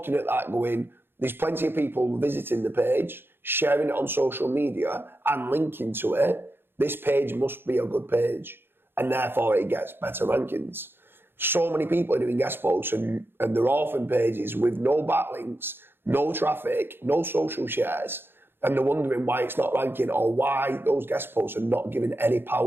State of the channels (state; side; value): late; left; 0.10 ms